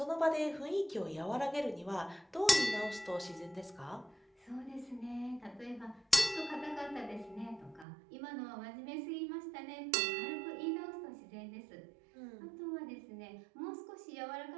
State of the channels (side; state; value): left; drops out; at 7.9 s